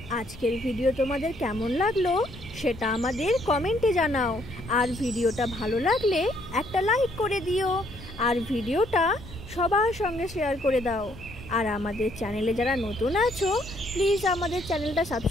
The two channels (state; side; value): noise; left; rumble, 18 dB below the sound